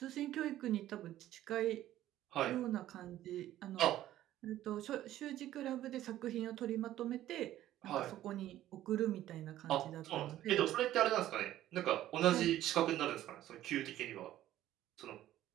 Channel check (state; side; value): quieter; left; 13.4 dB